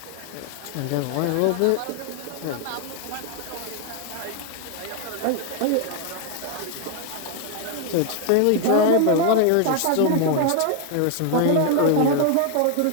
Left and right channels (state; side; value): different; both; correlation 0.00